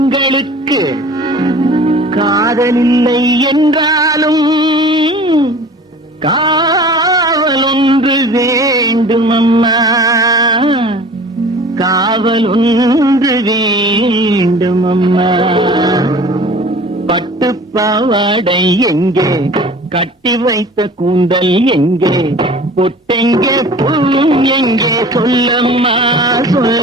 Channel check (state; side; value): normal; both; correlation 0.44